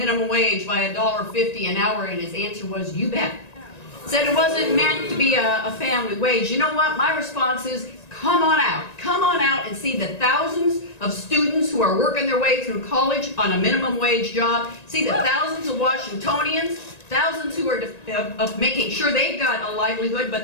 wage by $1.50 an hour, and his answer was, you bet. Said it wasn't meant to be a family wage. You know what? My response is, come on out and see the thousands of students who are working their way through college on a minimum wage job. See the thousands of Washingtonians, thousands who are making sure they've got a livelihood,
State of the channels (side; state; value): right; late; 1.9 ms